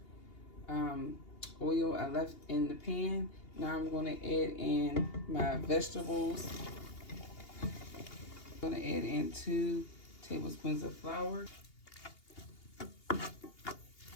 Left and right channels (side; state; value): right; late; 2.8 ms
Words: oil I left in the pan. Now I'm going to add in my vegetables. I'm going to add in 2 tablespoons of flour.